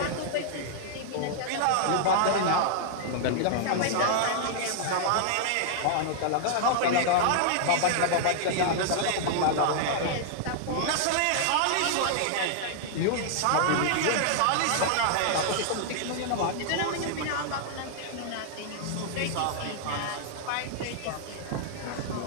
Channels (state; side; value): different; both; correlation -0.01